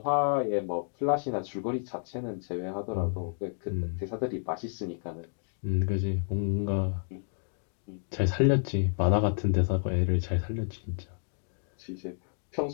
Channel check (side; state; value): right; silent; digital silence